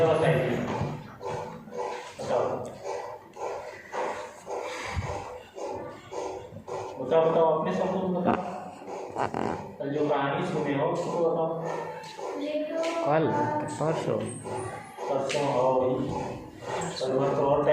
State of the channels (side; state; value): both; identical; correlation 1.00